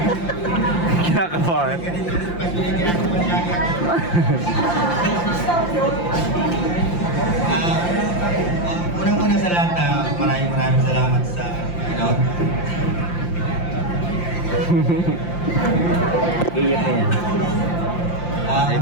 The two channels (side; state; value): right; late; 5.8 ms